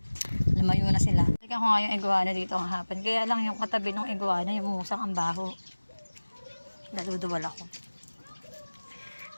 lumayo na sila. Tignan ko nga yung iguana dito ang hapon. Kaya lang yung katabi ng iguana, yung musang ang baho. Daluduwal ako.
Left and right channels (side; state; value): both; inverted; correlation -1.00